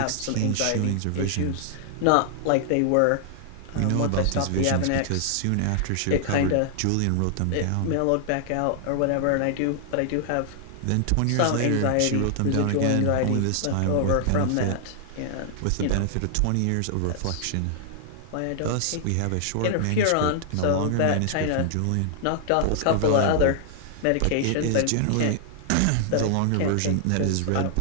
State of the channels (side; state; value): both; different; correlation 0.00